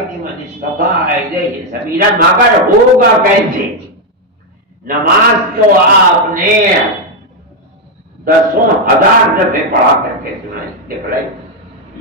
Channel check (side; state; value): both; normal; correlation 0.03